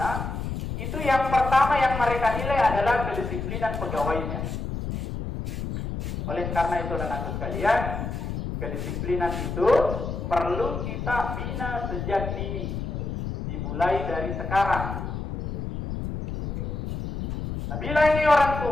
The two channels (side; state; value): left; noise; rumble, 5 dB below the sound